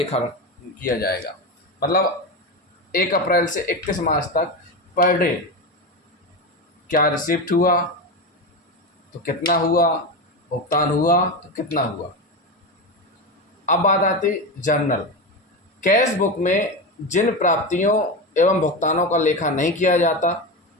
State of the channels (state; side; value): normal; both; correlation 0.18